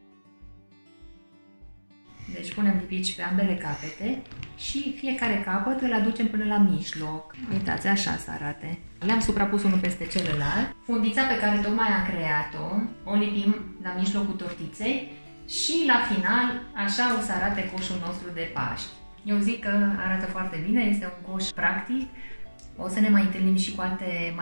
Deci punem lipici pe ambele capete și fiecare capăt îl aducem până la mijloc. Uitați, așa să arate. Le-am suprapus unul peste celălalt. Fundița pe care tocmai am creat-o, o lipim la mijlocul tortiței și la final așa o să arate coșul nostru de Paști. Eu zic că arată foarte bine, este un coș practic. O să ne mai întâlnim și cu alte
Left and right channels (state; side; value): inverted; both; correlation -1.00